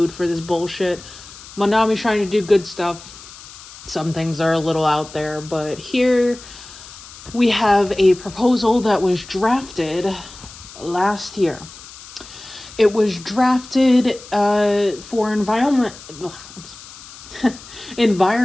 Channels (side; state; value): left; noise; hiss, 17 dB below the sound